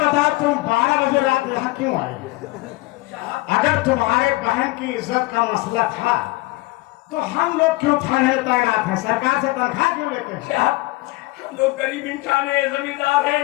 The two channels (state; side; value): quieter; right; 21.1 dB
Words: तुम 12 बजे रात यहाँ क्यों आए? अगर तुम्हारे बहन की इज्जत का मसला था तो हम लोग क्यों थाने तैनात हैं? सरकार से तनख्वाह क्यों लेते हैं? हम लोग गरीब इंसान है, जमींदार है,